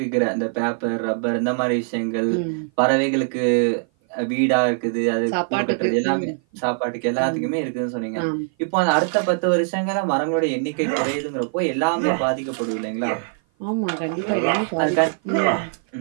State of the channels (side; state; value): left; silent; 56 dB below the other